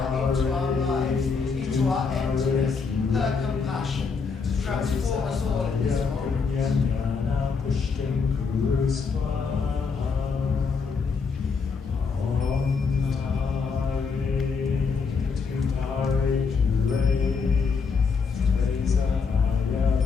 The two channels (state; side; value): quieter; right; 5.2 dB